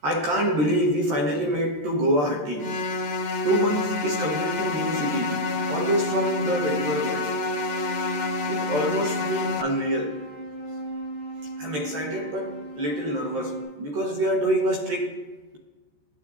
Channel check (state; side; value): late; left; 13 ms